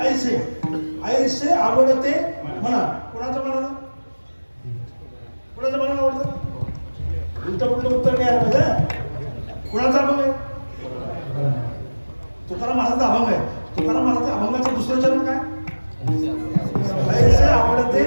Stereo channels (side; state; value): both; inverted; correlation -1.00